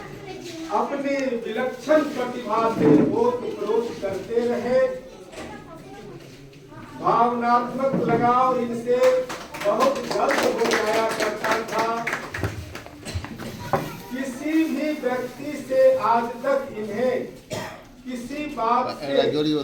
अपनी विलक्षण प्रतिभा से ओत-प्रोत करते रहे। भावनात्मक लगाव इनसे बहुत जल्द हो जाया करता था। किसी भी व्यक्ति से आज तक इन्हें किसी बात से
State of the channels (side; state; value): both; identical; correlation 1.00